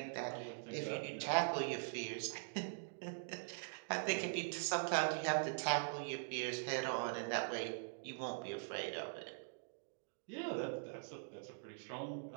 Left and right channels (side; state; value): left; silent; digital silence